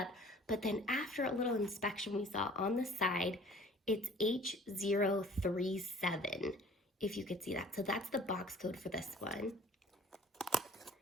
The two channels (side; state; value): both; normal; correlation 0.50